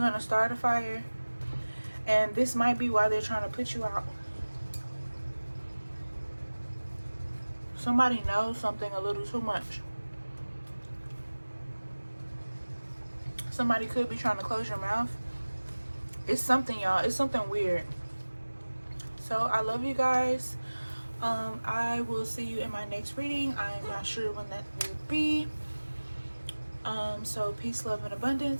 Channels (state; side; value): inverted; both; correlation -1.00